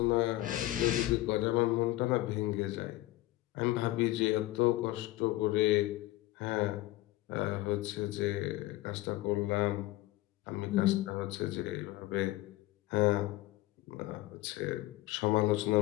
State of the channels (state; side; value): quieter; right; 17.3 dB